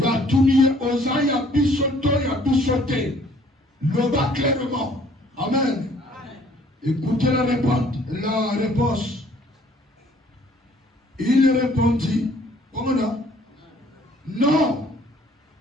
y a tout lié aux ans, il y a bissoté. Le bas clairement. Amen. Écoutez la réponse. Il répondit, comment là? Non,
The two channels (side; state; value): both; normal; correlation 0.58